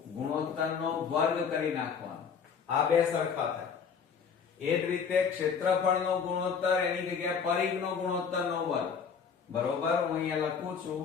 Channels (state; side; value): quieter; right; 6.3 dB